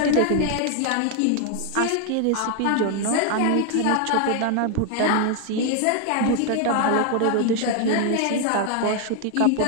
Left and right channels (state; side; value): different; both; correlation 0.00